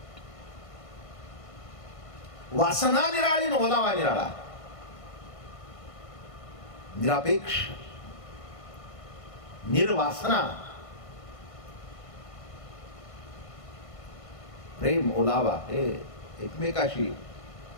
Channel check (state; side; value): late; right; 1.5 ms